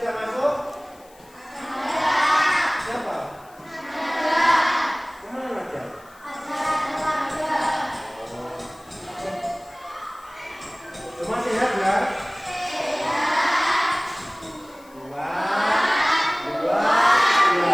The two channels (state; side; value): noise; left; hiss, 27 dB below the sound